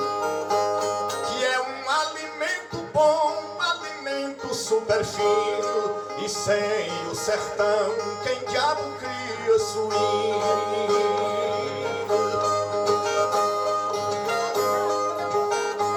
que é um alimento bom, um alimento super fino. E sem o sertão, quem diabo cria suíno?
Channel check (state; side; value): identical; both; correlation 1.00